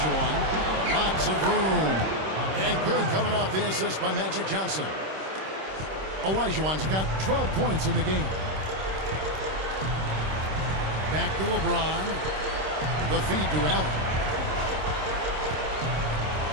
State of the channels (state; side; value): late; left; 26 ms